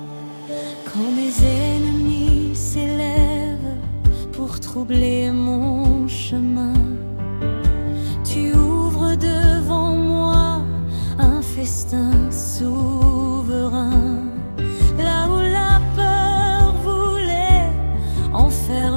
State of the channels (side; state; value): both; inverted; correlation -1.00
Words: Quand mes ennemis s'élèvent pour troubler mon chemin, tu ouvres devant moi un festin souverain. Là où la peur voulait